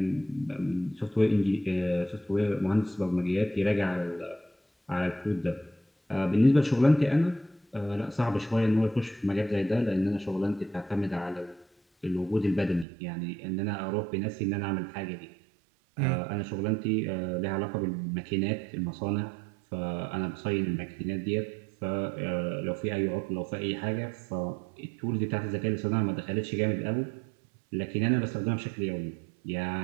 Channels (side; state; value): left; drops out; at 12.9 s